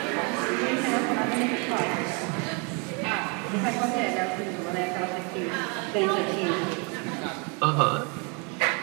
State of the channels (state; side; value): quieter; left; 32.3 dB